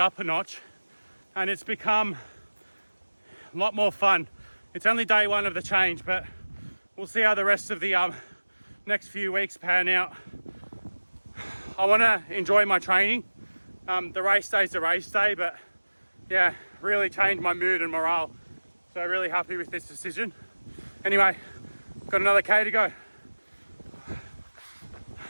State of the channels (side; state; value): both; inverted; correlation -1.00